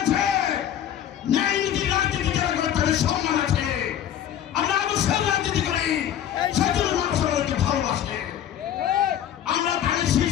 আছে, ন্যায় নীতি রাজনীতি যারা করে তাদের সম্মান আছে। আমরা অবশ্যই রাজনীতি করি, সেজন্য মানুষ আমাদেরকে ভালোবাসে। আমরা ধানের শীষ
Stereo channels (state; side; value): quieter; right; 10.5 dB